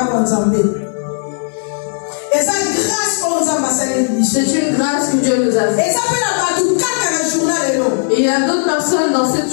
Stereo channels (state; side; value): silent; right; 61 dB below the other